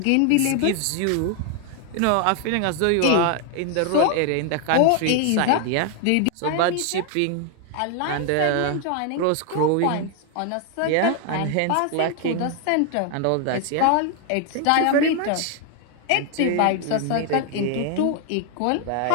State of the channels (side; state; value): both; different; correlation 0.00